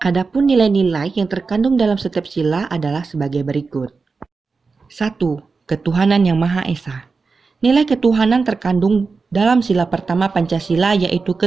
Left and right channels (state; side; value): quieter; left; 4.5 dB